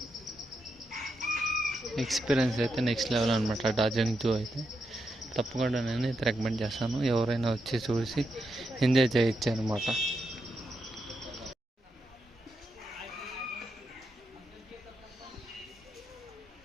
ఎక్స్పీరియన్స్ అయితే నెక్స్ట్ లెవెల్ అనమాట డార్జిలింగ్ జూ అయితే. తప్పకుండా నేను అయితే రికమెండ్ చేస్తాను, ఎవరైనా వచ్చి చూసి ఎంజాయ్ చేయొచ్చు అనమాట.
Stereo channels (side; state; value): both; normal; correlation 0.84